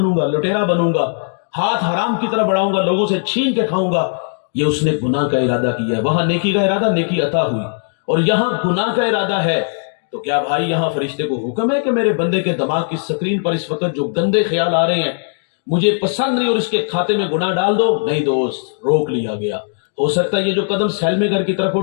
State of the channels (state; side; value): silent; right; digital silence